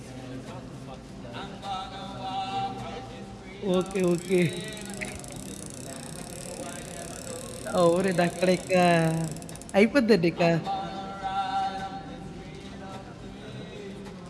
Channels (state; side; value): identical; both; correlation 1.00